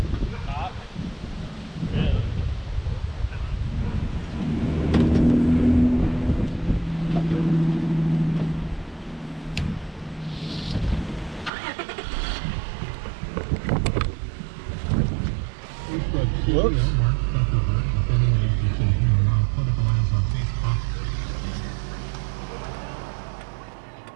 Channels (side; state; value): left; drops out; at 11.5 s